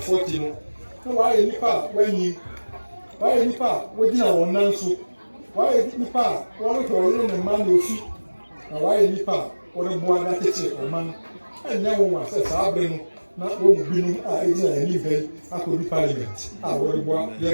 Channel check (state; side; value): inverted; both; correlation -1.00